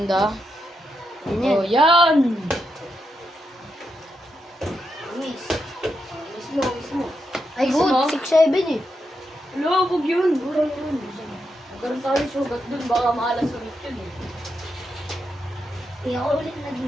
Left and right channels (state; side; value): normal; both; correlation 0.84